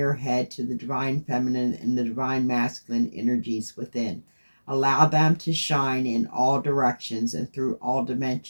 head to the divine feminine and the divine masculine energies within. Allow them to shine in all directions and through all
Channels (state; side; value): inverted; both; correlation -1.00